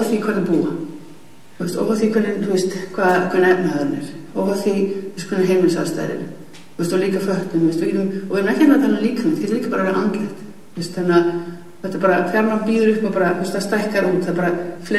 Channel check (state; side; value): identical; both; correlation 1.00